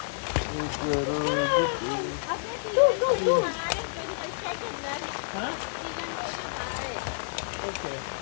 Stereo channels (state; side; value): silent; right; digital silence